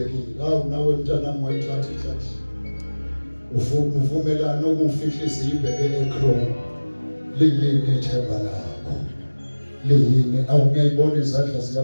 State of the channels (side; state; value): both; inverted; correlation -1.00